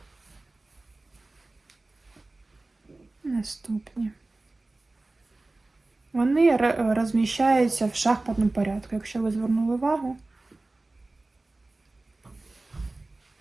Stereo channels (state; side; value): quieter; left; 3.0 dB